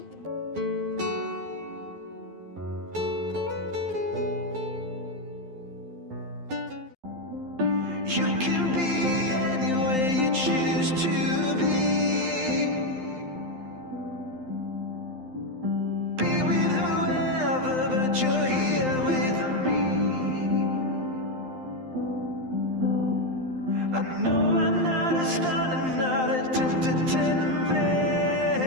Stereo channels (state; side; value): late; left; 12 ms